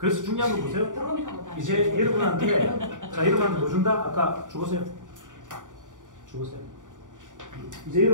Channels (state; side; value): late; left; 0.87 ms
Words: 중요한 거 보세요. 결혼하고 다니죠. 이제 여러분한테 뭐 준다? 아까 죽었어요. 이제